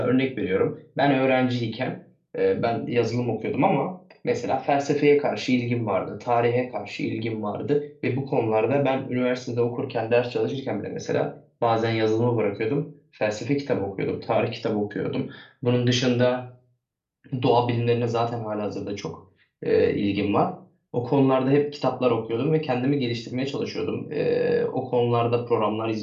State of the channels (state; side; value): identical; both; correlation 1.00